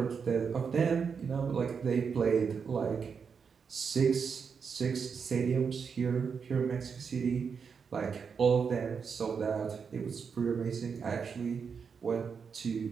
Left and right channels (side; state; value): left; quieter; 6.1 dB